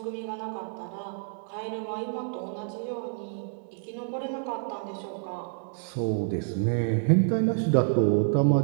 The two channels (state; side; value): silent; left; digital silence